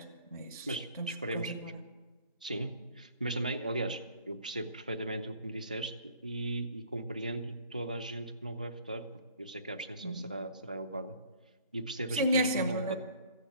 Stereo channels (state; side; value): inverted; both; correlation -0.56